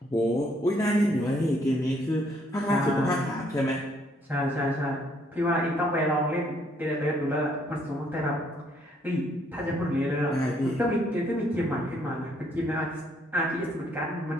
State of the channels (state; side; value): normal; both; correlation 0.68